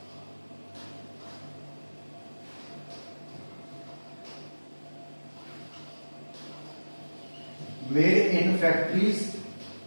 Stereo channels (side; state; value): both; inverted; correlation -1.00